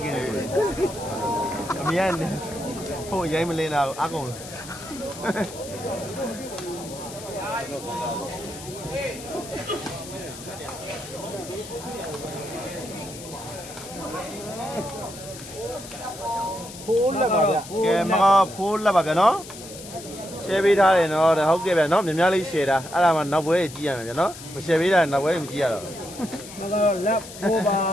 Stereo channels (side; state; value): left; noise; hiss, 14 dB below the sound